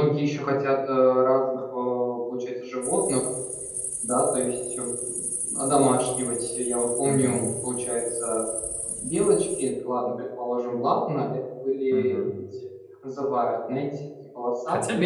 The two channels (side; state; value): both; identical; correlation 1.00